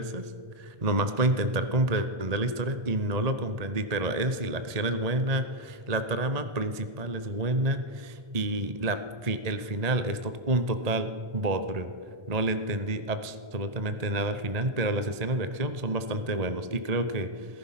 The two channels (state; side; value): late; left; 1.8 ms